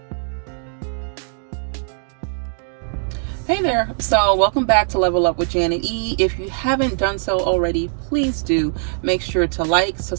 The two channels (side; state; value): left; silent; digital silence